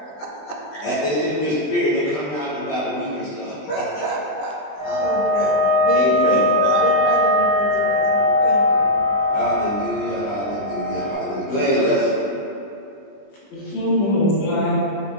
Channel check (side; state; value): right; late; 20 ms